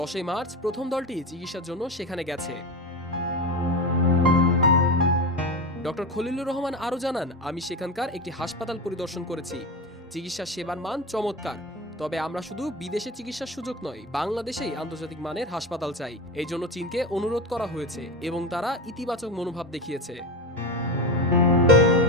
মার্চ প্রথম দলটি চিকিৎসার জন্য সেখানে গেছে। ডক্টর খলিলুর রহমান আরও জানান, আমি সেখানকার একটি হাসপাতাল পরিদর্শন করেছি। চিকিৎসা সেবার মান চমৎকার। তবে আমরা শুধু বিদেশে চিকিৎসার সুযোগ নয়, বাংলাদেশেই আন্তর্জাতিক মানের হাসপাতাল চাই। এই জন্য চীনকে অনুরোধ করা হয়েছে এবং তারা ইতিবাচক মনোভাব দেখিয়েছে।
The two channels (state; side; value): normal; both; correlation 0.21